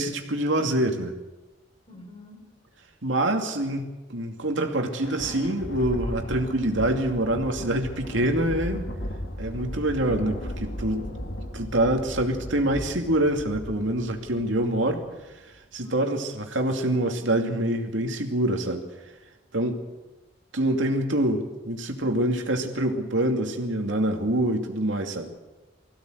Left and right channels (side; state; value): both; normal; correlation 0.32